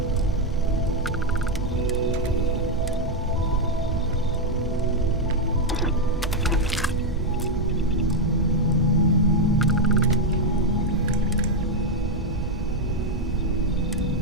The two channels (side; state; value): both; normal; correlation 0.03